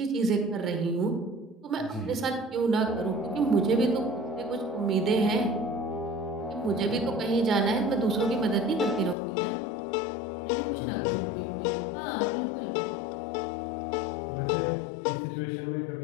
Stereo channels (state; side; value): drops out; right; at 9.2 s